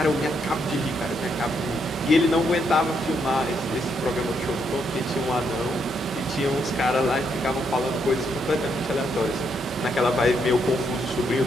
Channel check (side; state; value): both; normal; correlation 0.76